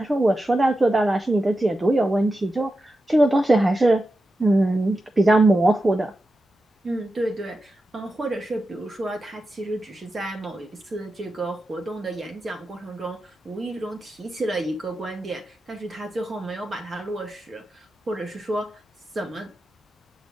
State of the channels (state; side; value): normal; both; correlation 0.91